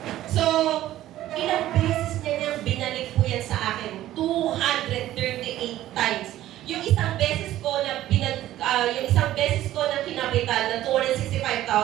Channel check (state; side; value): quieter; left; 14.0 dB